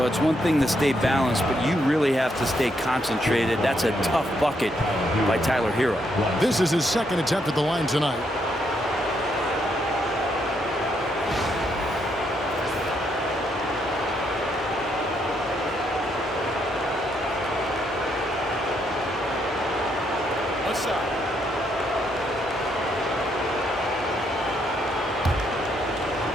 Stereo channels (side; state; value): both; normal; correlation 0.76